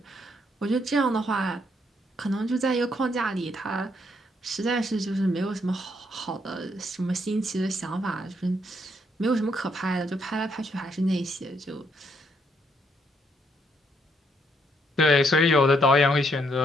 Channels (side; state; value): both; normal; correlation 0.73